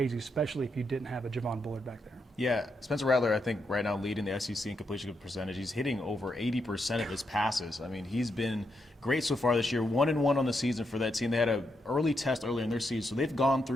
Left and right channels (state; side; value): normal; both; correlation 0.81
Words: especially if you didn't have a Javon Bullard back there. Yeah, Spencer Rattler, I think, right now leading the SEC in completion percentage. He's hitting over 80% of his passes. I mean, he's been great so far this year. 1-1 on the season for that team. They had an early test earlier in their season, so they've gone